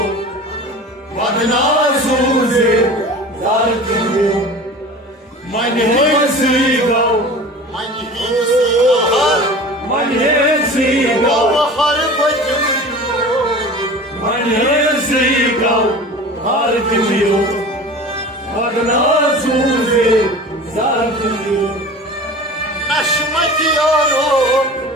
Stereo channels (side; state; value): both; normal; correlation 0.38